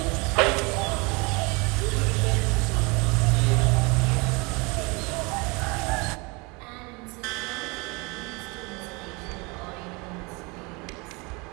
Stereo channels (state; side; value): quieter; left; 28.0 dB